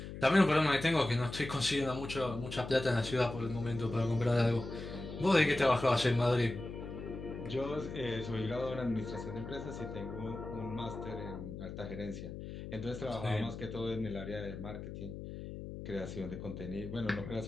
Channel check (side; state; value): left; noise; hum, 9 dB below the sound